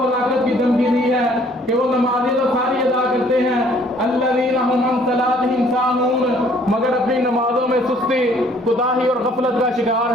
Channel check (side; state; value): both; normal; correlation 0.59